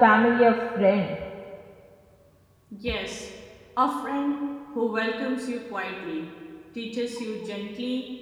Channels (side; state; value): both; identical; correlation 1.00